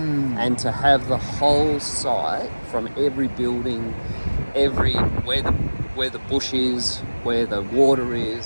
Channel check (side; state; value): both; inverted; correlation -1.00